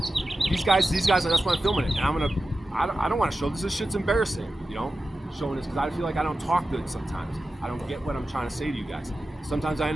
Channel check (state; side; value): normal; both; correlation 0.93